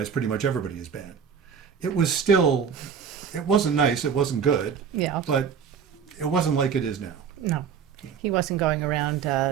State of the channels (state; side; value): quieter; left; 7.0 dB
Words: pretty much everybody as bad. It wasn't nice. It wasn't good. Yeah. But it wasn't like it is now. No, he wasn't going around